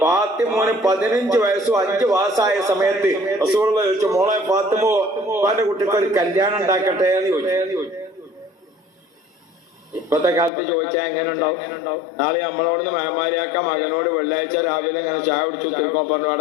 ഫാത്തിമോന് 15 വയസ്സും 5 മാസമായ സമയത്ത് റസൂലുള്ളാഹി ചോദിച്ചു, മോളെ ഫാത്തിമോ ഉപ്പാന്റെ കുട്ടിക്ക് ഒരു കല്യാണം ഉണ്ടാക്കട്ടെ എന്ന് ചോദിച്ചു. ഇപ്പത്തെ കാലത്ത് ചോദിച്ചാൽ എങ്ങനെ ഉണ്ടാവും? നാളെ നമ്മളോടൊന്ന് മേമാരിയാക്ക മകനോട് വെള്ളിയാഴ്ച രാവിലെ ഇങ്ങനെ ചായ കുടിച്ചു തിരുമ്പോ പറഞ്ഞു,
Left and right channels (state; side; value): drops out; right; at 10.5 s